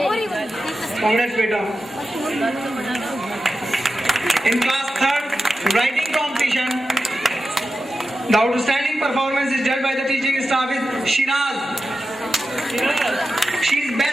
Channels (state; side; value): normal; both; correlation 0.91